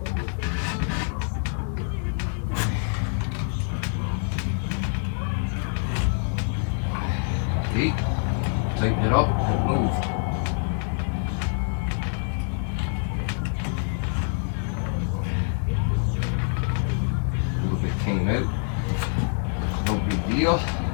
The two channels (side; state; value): right; silent; 58 dB below the other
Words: Tighten it up and move. A little bit came out. No big deal.